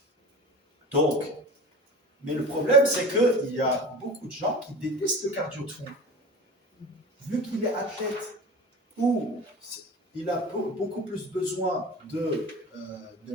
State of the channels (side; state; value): both; normal; correlation 0.35